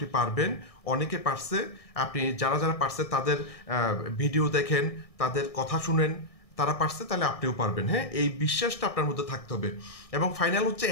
পারবেন। অনেকে পারছে, আপনি যারা যারা পারছে তাদের ভিডিও দেখেন, তাদের কথা শুনেন, তারা পারছে, তাহলে আপনিও পারবেন। হ্যাঁ, এই বিশ্বাসটা আপনার মধ্যে থাকতে হবে। এবং ফাইনাল হচ্ছে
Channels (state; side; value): late; right; 1.6 ms